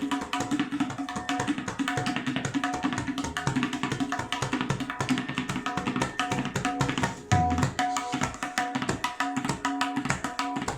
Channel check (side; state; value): both; identical; correlation 1.00